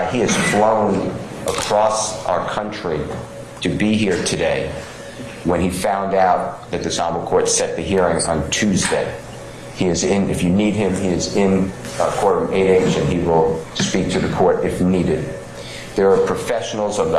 He has flown across our country to be here today when he found out that this honorable court set the hearing on Tuesday. He is in, if you need him, he is in courtroom 8H, and he will speak to the court if needed. There are professionals of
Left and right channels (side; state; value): both; identical; correlation 1.00